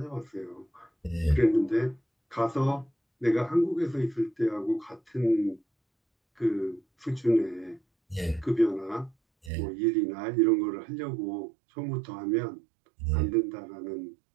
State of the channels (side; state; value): left; drops out; at 9.5 s